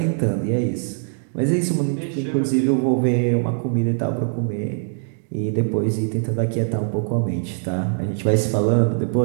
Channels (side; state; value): left; silent; digital silence